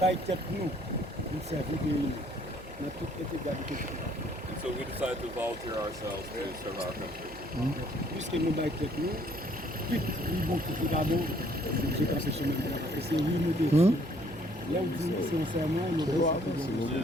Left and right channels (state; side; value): noise; right; hum, 19 dB below the sound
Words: été nous, nous servons de nous. Nous avons tout été gardés. So we decided to volunteer ourselves to serve our country. Puisque nous avons été nous, vite, nous avons quitté d'abord, c'est comme ce chemin là. Et c'est oui, nous décidons. Là où nous sommes sincèrement, nous devons.